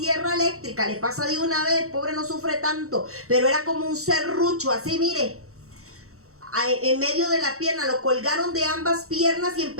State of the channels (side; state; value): left; late; 0.64 ms